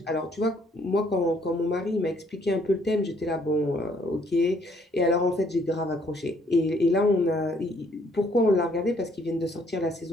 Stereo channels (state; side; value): normal; both; correlation 0.66